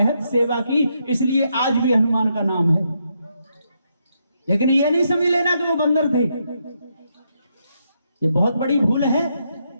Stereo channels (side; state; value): both; inverted; correlation -0.79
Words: सेवा की, इसलिए आज भी हनुमान का नाम है। लेकिन ये नहीं समझ लेना कि वो बंदर थे, ये बहुत बड़ी भूल है।